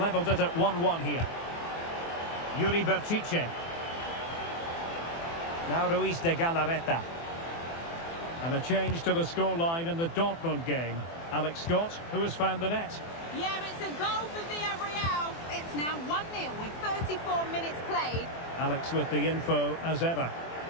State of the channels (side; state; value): right; late; 24 ms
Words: it at 1-1 here. Yuri Berchiche. Now Ruiz de Galarreta. And a change to the scoreline in the Dortmund game. Alex Scott, who has found the net. Yeah, it's a goal for Villarreal. It's now 1-0 with 34 minutes played. Alex with the info as ever.